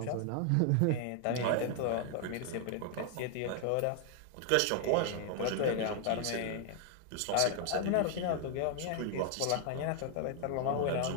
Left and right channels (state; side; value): different; both; correlation 0.00